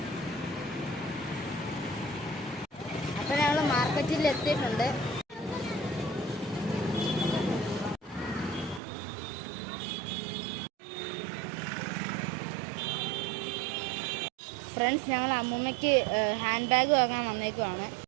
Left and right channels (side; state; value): left; drops out; at 8.8 s